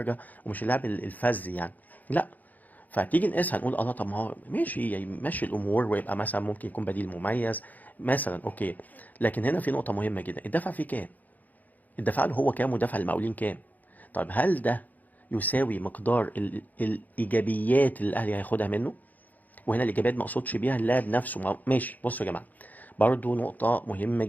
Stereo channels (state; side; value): late; right; 0.081 ms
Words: ومش اللاعب الفذ يعني، لا. فتيجي نقيسها نقول الله طب ما هو ماشي يمشي الامور ويبقى مثلا ممكن يكون بديل مميز مثلا، اوكي. لكن هنا في نقطه مهمه جدا: الدفع فيه كام؟ الدفع له هو كام ودفع المقاولين كام؟ طيب هل ده يساوي مقدار الايجابيات اللي الاهلي هياخدها منه؟ وهنا الايجابيات ما اقصدش بيها اللاعب نفسه، ماشي. بصوا يا جماعه، برضو نقطه مهمه